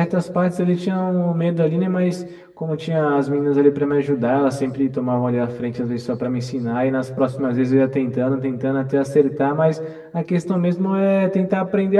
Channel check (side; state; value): both; identical; correlation 1.00